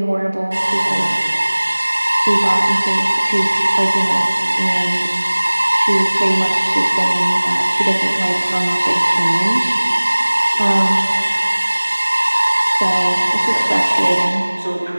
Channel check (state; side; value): inverted; both; correlation -1.00